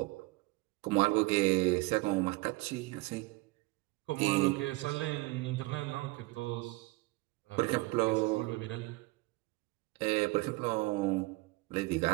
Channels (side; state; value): left; quieter; 22.1 dB